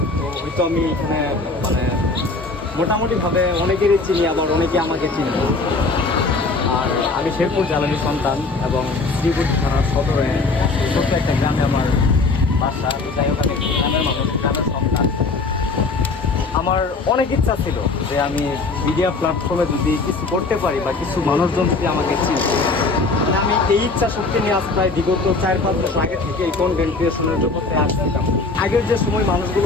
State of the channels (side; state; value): right; quieter; 3.7 dB